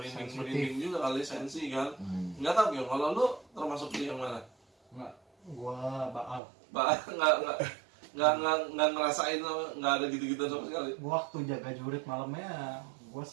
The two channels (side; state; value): left; drops out; at 6.4 s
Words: juga kali, sensi kan. Nggak tahu ya, kalau lu termasuk di yang mana? Gua Baal. Nggak ngerasain, nggak ada gitu-gitu sama sekali. Gua waktu jaga jurit malamnya, gua